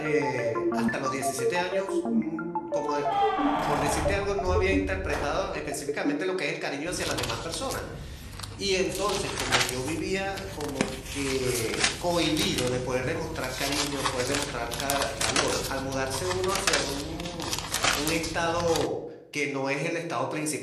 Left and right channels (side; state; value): both; identical; correlation 1.00